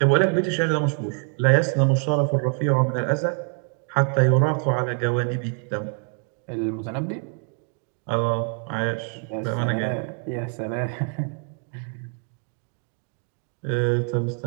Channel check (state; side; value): quieter; left; 39.2 dB